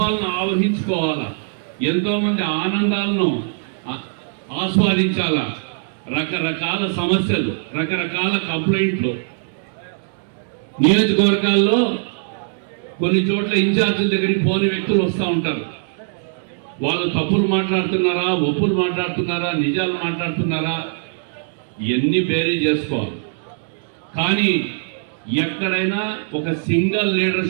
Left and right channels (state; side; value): silent; left; digital silence